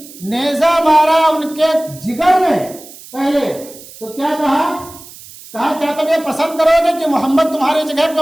نیزہ مارا ان کے جگر میں پہلے تو کیا کہا کیا تم یہ پسند کرو گے کہ محمد تمہاری جگہ پہ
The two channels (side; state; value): right; noise; hiss, 18 dB below the sound